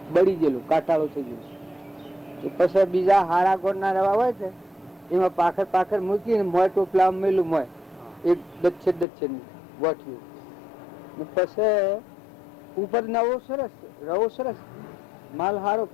બળી ગયેલું, કાટાળો થઈ ગયો. પછી બીજા હારા ગોળ ના રવા હોય છે એમાં પાખર મૂકીને મોય ટોપલા મેલું મોય એક દચ્છે ગોઠવ્યું. પછી ઉપર નવો સરસ રવો સરસ માલ હારો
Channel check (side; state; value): right; drops out; at 9.1 s